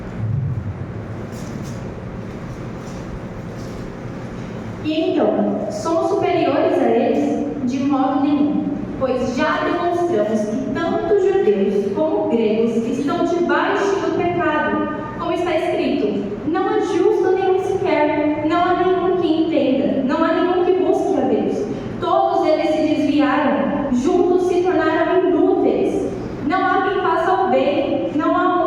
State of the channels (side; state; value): both; identical; correlation 1.00